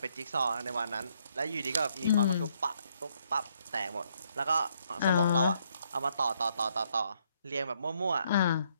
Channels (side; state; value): both; inverted; correlation -0.71